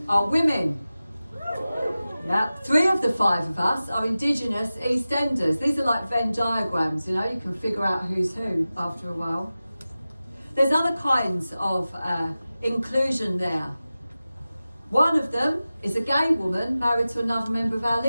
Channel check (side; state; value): both; inverted; correlation -0.95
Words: are women. Yeah, 3 of the 5 of us are Indigenous East Enders. These are like Venn diagrams, you know, you can figure out who's who after a while. There's other kinds of inclusion there. One of them is a gay woman married to another member of our